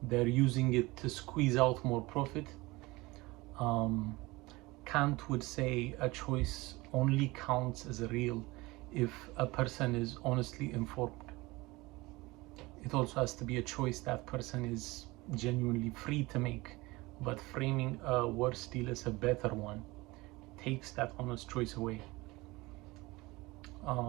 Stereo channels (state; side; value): quieter; left; 21.9 dB